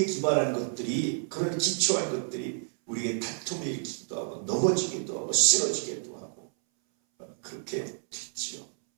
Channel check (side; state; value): left; silent; 58 dB below the other